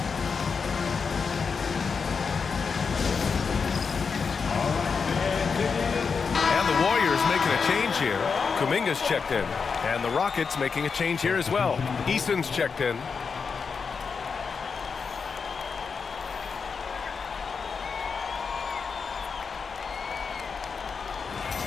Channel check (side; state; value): right; quieter; 5.5 dB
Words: And the Warriors making a change here. Kuminga's checked in. And the Rockets making a change here as well. Eason's checked in.